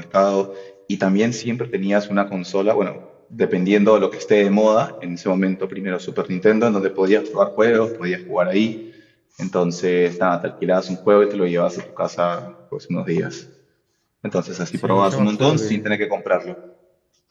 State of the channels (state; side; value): identical; both; correlation 1.00